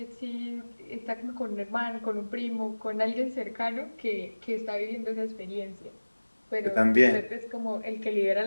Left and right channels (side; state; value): both; inverted; correlation -1.00